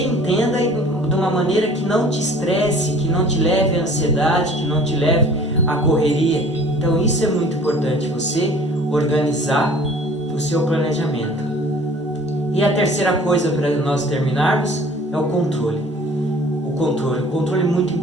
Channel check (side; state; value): both; normal; correlation 0.49